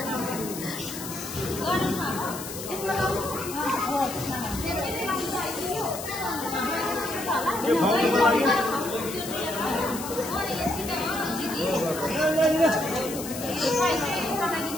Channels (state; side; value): noise; left; hiss, 9 dB below the sound